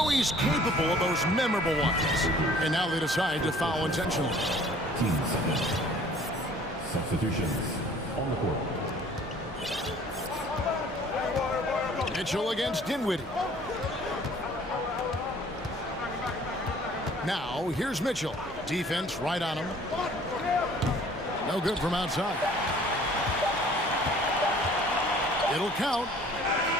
he's capable of those memorable ones. And now they decide to foul intentionally. Substitutions on the court. Mitchell against Dinwiddie. Now, here's Mitchell. Defense right on him. No good from outside. It'll count.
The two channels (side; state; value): both; normal; correlation 0.53